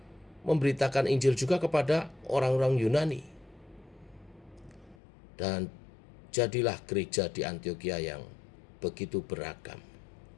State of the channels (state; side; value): drops out; right; at 5.0 s